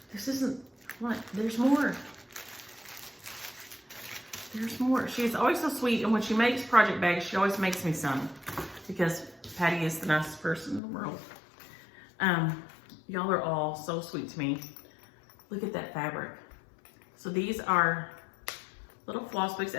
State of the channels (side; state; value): right; drops out; at 10.8 s